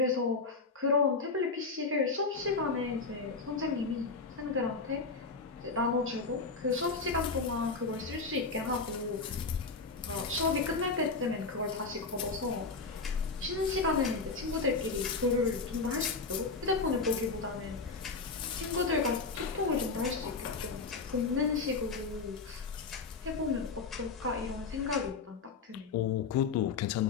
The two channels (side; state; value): right; quieter; 4.3 dB